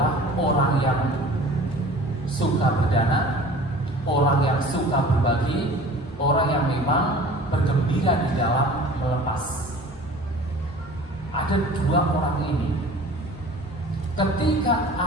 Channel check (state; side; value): normal; both; correlation 0.44